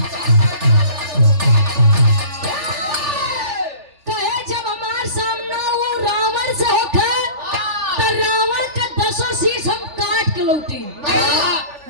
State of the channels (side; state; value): left; late; 3.4 ms